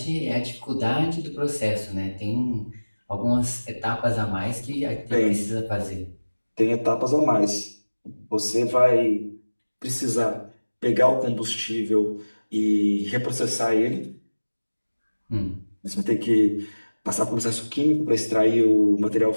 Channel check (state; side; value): inverted; both; correlation -1.00